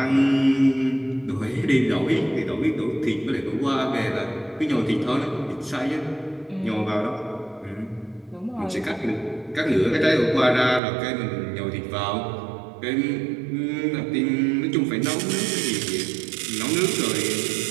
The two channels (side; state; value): left; drops out; at 10.8 s